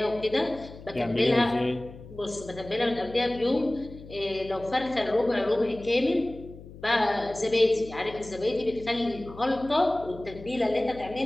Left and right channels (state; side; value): noise; left; hum, 17 dB below the sound